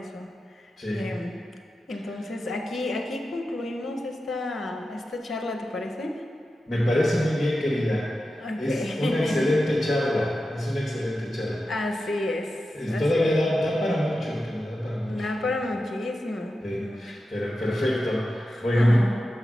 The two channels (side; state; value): both; normal; correlation 0.91